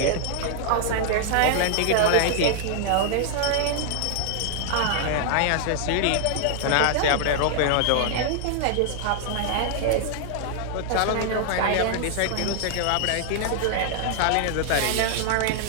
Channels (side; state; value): both; different; correlation -0.01